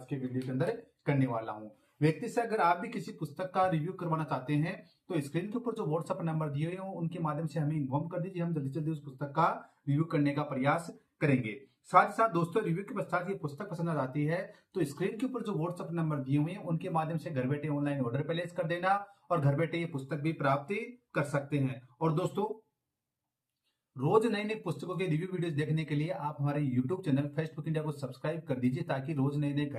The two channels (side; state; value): both; identical; correlation 1.00